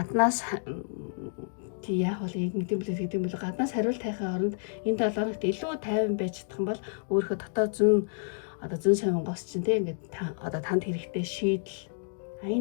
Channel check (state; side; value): silent; right; digital silence